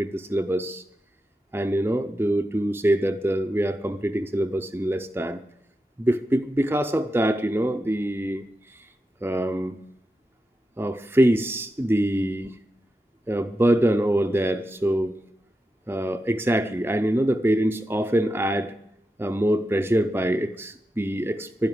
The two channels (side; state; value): both; normal; correlation 0.89